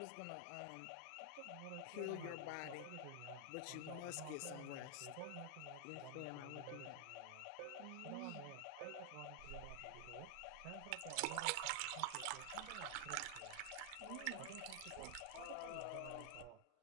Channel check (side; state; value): both; different; correlation 0.00